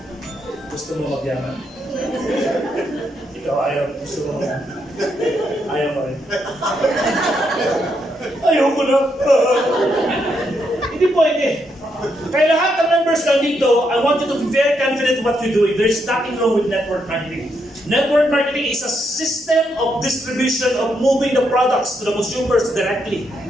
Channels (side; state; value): both; normal; correlation 0.79